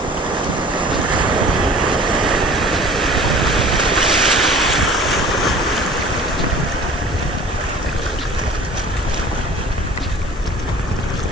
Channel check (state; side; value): normal; both; correlation 0.46